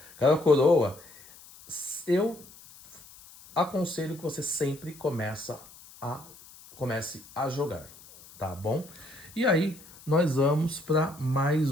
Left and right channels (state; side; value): noise; left; hiss, 21 dB below the sound